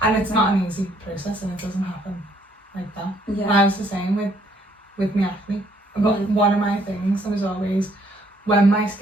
And it's not an easy process, and it doesn't happen like that. Yeah. And I was the same with my acne. But one of my things was always, when my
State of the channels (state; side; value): normal; both; correlation 0.66